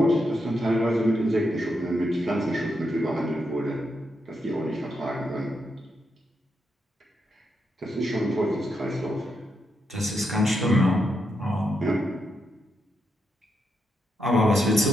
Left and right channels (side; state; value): both; normal; correlation 0.82